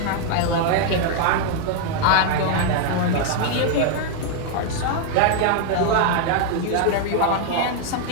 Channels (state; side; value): different; both; correlation 0.00